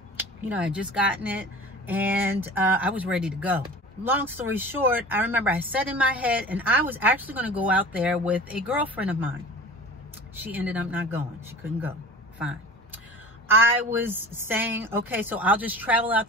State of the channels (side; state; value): both; normal; correlation 0.39